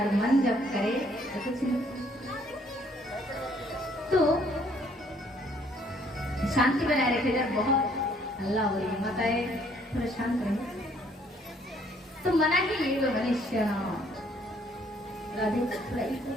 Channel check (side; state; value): both; normal; correlation 0.64